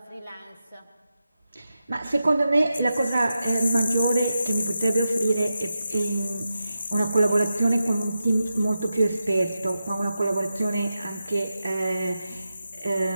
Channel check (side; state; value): both; inverted; correlation -0.90